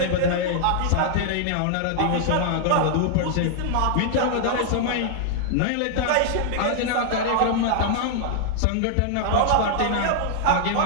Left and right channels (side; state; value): both; different; correlation -0.01